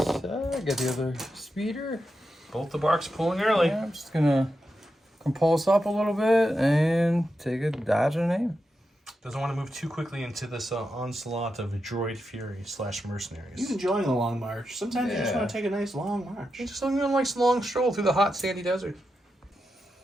I got the other speeder. Both the barks pulling early. Yeah, I'm just gonna compulse up a little bit and take a dodge and aim. Doesn't want to move too quickly into this onslaught of droid fury / mercenaries. He's enjoying a long march. Sometimes you just want to take a nice long march. He's just looking like a long stroll through the hot sandy desert.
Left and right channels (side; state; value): both; normal; correlation 0.88